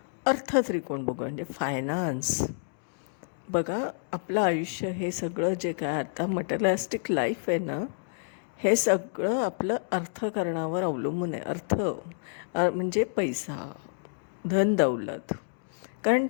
अर्थत्रिकोण बघू म्हणजे फायनान्स. बघा, आपलं आयुष्य हे सगळं जे काय आता मटेरियलिस्टिक लाईफ आहे ना, हे सगळं आपलं अर्थकारणावर अवलंबून आहे. म्हणजे पैसा, धन दौलत. कारण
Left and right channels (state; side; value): silent; right; digital silence